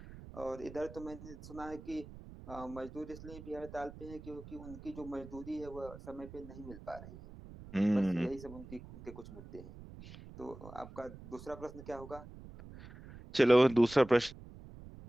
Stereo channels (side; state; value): right; noise; rumble, 15 dB below the sound